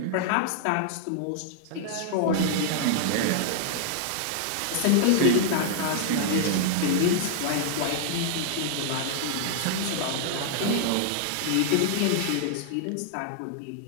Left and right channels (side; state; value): both; different; correlation -0.01